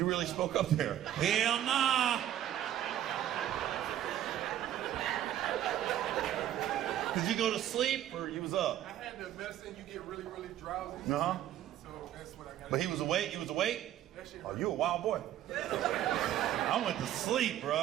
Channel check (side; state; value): left; quieter; 12.0 dB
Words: really spoke up there. Hell nah. Did you go to sleep or you was up? I had the medicine, you get really, really drowsy. Uh-huh. So that's what I got. But he was awake? He was awake? That shit Oh, you a wild boy. I went to sleep,